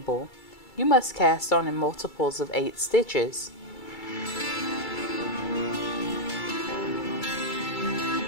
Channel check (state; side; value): late; right; 2.3 ms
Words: You must cast on in multiples of 8 stitches.